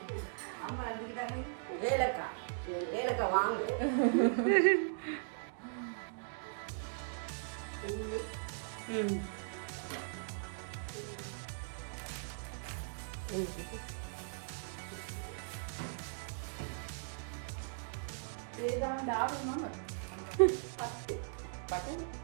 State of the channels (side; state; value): left; silent; digital silence